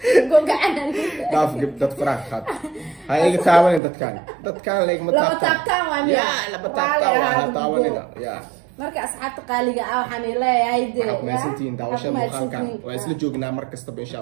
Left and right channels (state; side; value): drops out; left; at 3.8 s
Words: قوق عنا ناف جبت فرح خد هاي تعاون دت كان ليك متابتان وامي يا لا بتابتان تعاون يا marka asxaabta qaaliga ah waxaan leeyahay meesantiin daawashada muuqaalkan waa isla joognaa mar kastaba insha